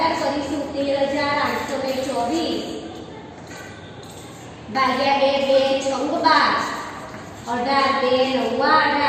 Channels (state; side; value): identical; both; correlation 1.00